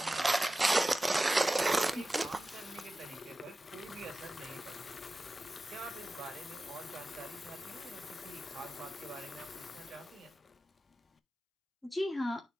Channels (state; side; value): normal; both; correlation 0.95